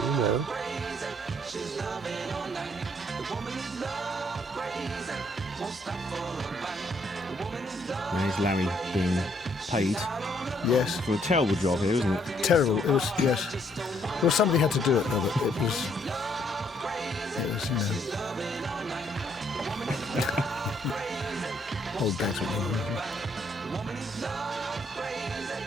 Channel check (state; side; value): normal; both; correlation 0.69